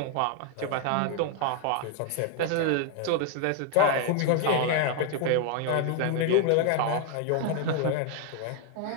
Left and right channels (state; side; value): different; both; correlation 0.00